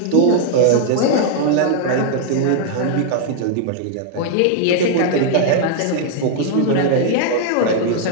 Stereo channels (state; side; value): different; both; correlation 0.00